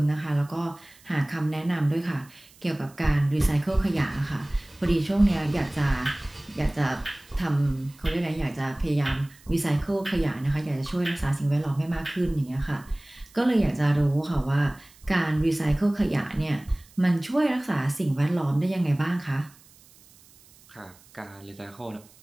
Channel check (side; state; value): right; noise; hiss, 26 dB below the sound